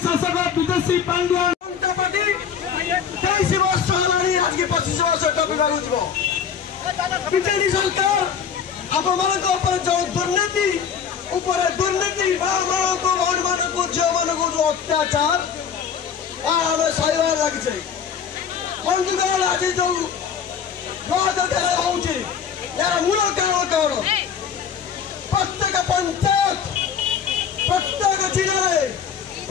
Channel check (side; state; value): right; quieter; 7.4 dB